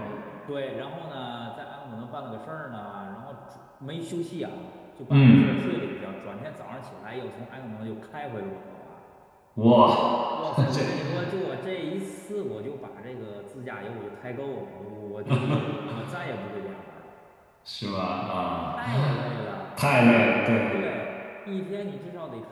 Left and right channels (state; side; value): identical; both; correlation 1.00